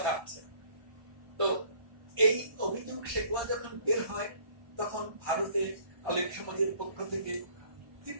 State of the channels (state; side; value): late; left; 1.5 ms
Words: আছে। তো এই অভিযোগ শেকোয়া যখন বের হয় তখন ভারতে আলেম সমাজের পক্ষ থেকে